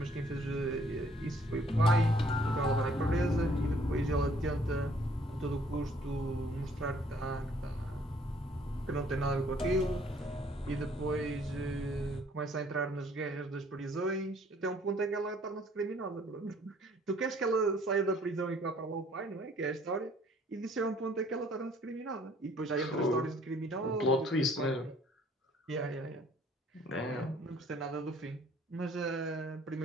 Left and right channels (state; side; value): normal; both; correlation 0.60